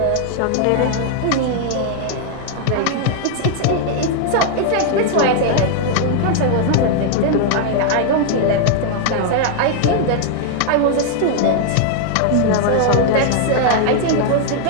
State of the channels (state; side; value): different; both; correlation 0.00